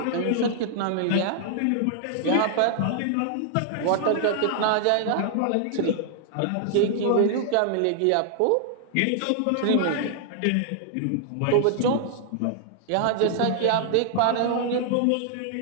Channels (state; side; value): different; both; correlation -0.01